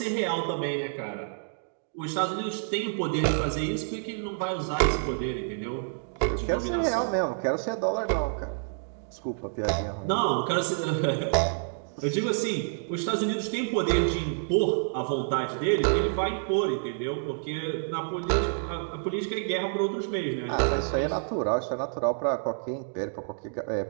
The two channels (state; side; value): silent; left; digital silence